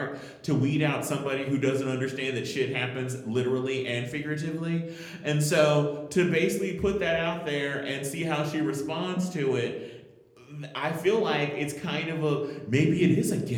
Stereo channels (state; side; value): identical; both; correlation 1.00